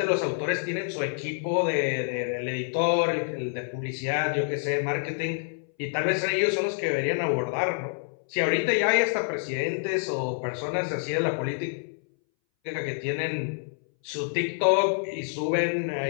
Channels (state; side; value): silent; right; 60 dB below the other